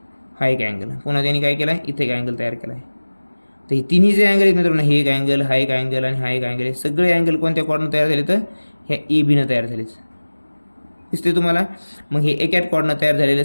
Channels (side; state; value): both; inverted; correlation -1.00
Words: हा एक अँगल. पुन्हा त्यांनी काय केला, इथे एक अँगल तयार केला आहे. तर हे तिन्ही जे अँगल आहेत मित्रांनो, हे एक अँगल, हा एक अँगल आणि हा एक अँगल, हे सगळे अँगल कोणत्या कॉर्डनं तयार झाले, तर ह्या ए बीनं तयार झालेच, दिसते तुम्हाला. मग हे एकाच कॉर्डनं तयार झालेल्या